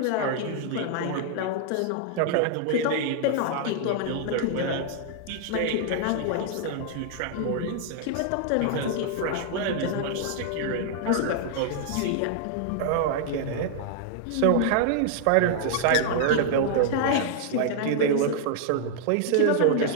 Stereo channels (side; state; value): both; different; correlation -0.01